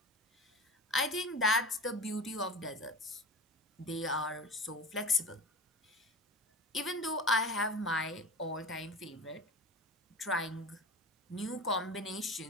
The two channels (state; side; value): normal; both; correlation 0.33